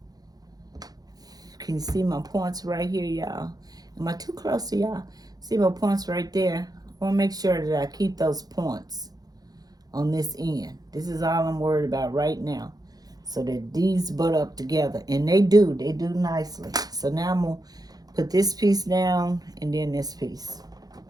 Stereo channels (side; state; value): left; late; 0.19 ms